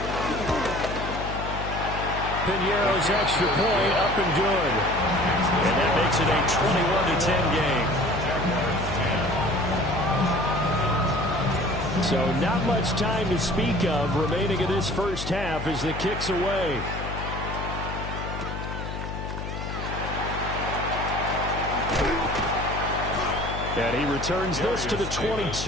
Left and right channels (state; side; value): noise; left; hum, 6 dB below the sound